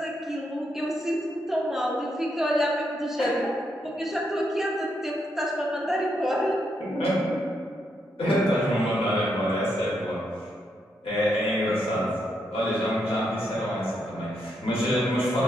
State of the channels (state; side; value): normal; both; correlation 0.79